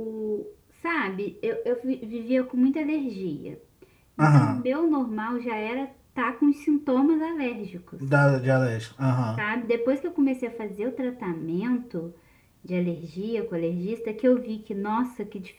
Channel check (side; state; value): both; identical; correlation 1.00